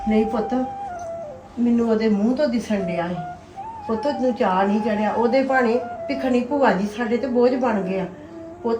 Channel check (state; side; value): identical; both; correlation 1.00